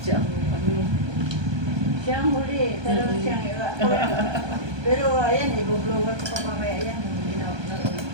siya ang ano. Siya ang huli, pero siyang iba. Pero ayan, i-blower ko pa mamaya yan.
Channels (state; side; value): late; left; 1.2 ms